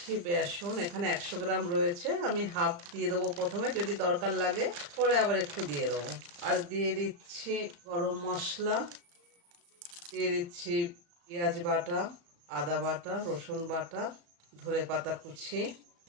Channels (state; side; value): late; left; 35 ms